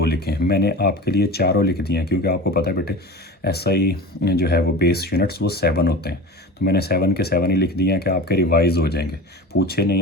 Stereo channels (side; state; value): both; normal; correlation 0.34